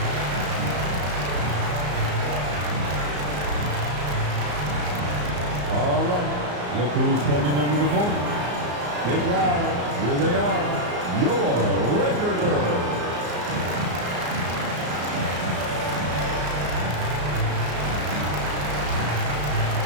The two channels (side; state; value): left; late; 34 ms